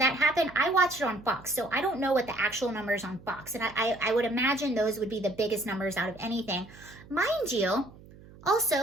happened. I watched it on Fox, so I don't know what the actual numbers on Fox. And I would imagine those would be the biggest numbers out of anything. Mind you,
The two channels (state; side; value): noise; right; hum, 21 dB below the sound